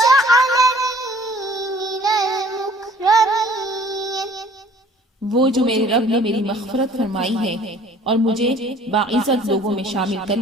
من المكرمين وہ جو میرے رب نے میری مغفرت فرمائی ہے اور مجھے باعزت لوگوں میں شامل کر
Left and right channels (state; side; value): normal; both; correlation 0.53